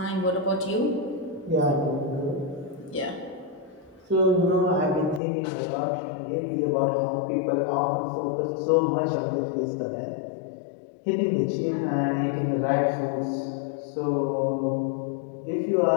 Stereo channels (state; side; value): drops out; right; at 5.2 s